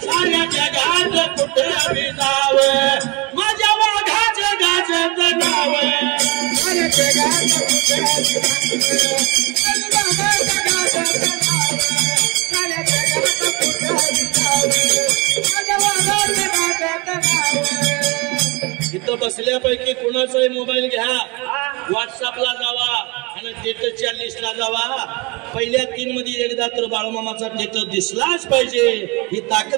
साऱ्या जगात कुठे बी जावे, माझ्या वाघाचं गाजत नाव. इथं बसल्यापैकी कुणाचाही मोबाईल घ्या, व्हॉट्सअपला जावा आणि स्टेटसच्या लिस्टला जावा. पहिल्या 3 मध्ये एकदा तर बाळूमामाचा स्टेटस दिसलाच पाहिजे. ही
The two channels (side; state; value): left; quieter; 27.1 dB